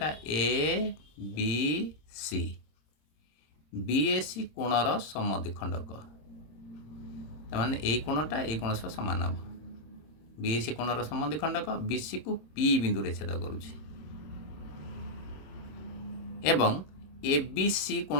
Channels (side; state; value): right; late; 26 ms